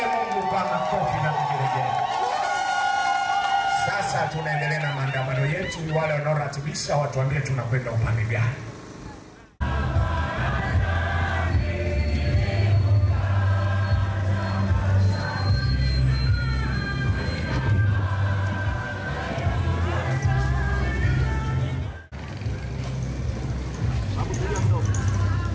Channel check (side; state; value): both; identical; correlation 1.00